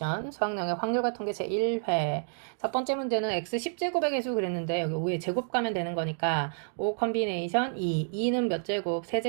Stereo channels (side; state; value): left; silent; digital silence